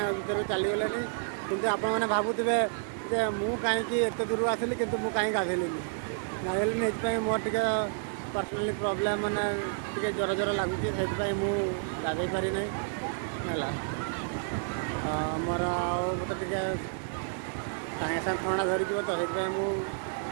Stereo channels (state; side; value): silent; left; digital silence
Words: ଭିତରୁ ଚାଲିଗଲେଣି, କିନ୍ତୁ ଆପଣମାନେ ଭାବୁଥିବେ ଯେ ମୁଁ କାହିଁକି ଏତେ ଦୂରରୁ ଆସିଲି କିନ୍ତୁ ମୁଁ କାହିଁକି ଗାଧେଇଲିନି। ଗାଧେଇଲିନି ଏଥିପାଇଁ ମୋର ଟିକେ ପର୍ସନାଲି ପ୍ରୋବ୍ଲେମ୍, ମାନେ ଟିକେ ଜ୍ୱର ଜ୍ୱର ଲାଗୁଛି, ସେଥିପାଇଁ ମୁଁ ଗାଧେଇ ପାରିନାହିଁ ହେଲା। ମୋର ଆଉ ମୋତେ ଟିକେ ସାଙ୍ଗେ ସାଙ୍ଗେ ଥଣ୍ଡା ଧରିଯିବ ତ, ସେଥିପାଇଁ ମୁଁ